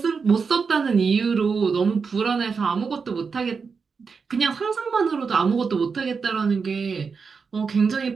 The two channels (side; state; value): left; quieter; 5.3 dB